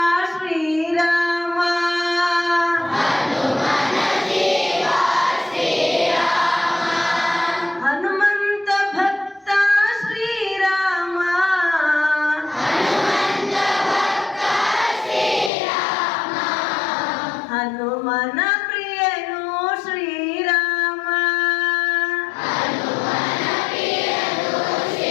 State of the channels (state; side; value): drops out; right; at 15.5 s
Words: श्रीराम हनुमंत भक्त श्रीराम हनुमन